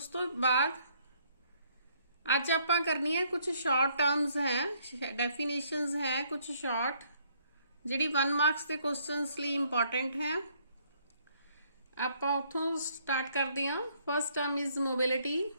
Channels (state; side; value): inverted; both; correlation -0.66